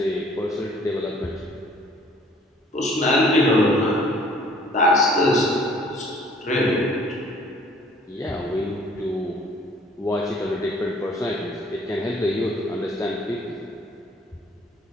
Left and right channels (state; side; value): normal; both; correlation 0.55